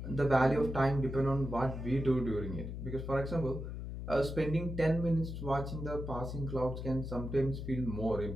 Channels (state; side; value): noise; left; hum, 6 dB below the sound